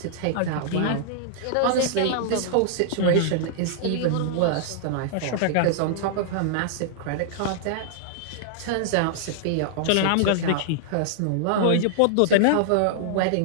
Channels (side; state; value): both; different; correlation -0.01